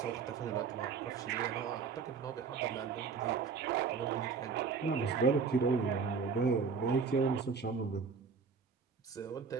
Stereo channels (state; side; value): quieter; left; 5.4 dB